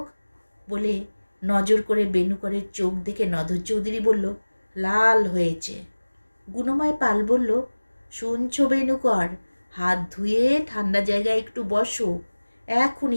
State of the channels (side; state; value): both; inverted; correlation -1.00